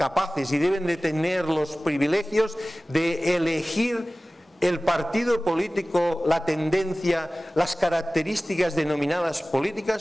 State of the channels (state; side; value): normal; both; correlation 0.97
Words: y deben de tener los privilegios de elegir el partido político, la tendencia, las características denominadas